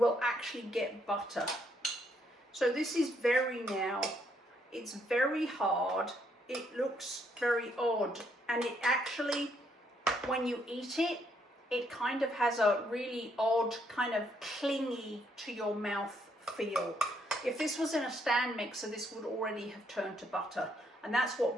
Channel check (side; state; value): both; normal; correlation 0.73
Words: actually get butter. So this is it's very hard, it looks very odd, and it actually, when you eat it, it kind of has a really odd, kind of clingy to your mouth feel. If this was in a stand mixer, this would already have turned to butter. And that's